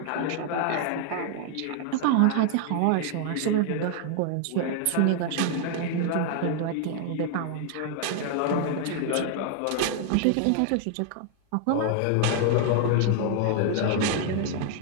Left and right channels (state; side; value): different; both; correlation 0.00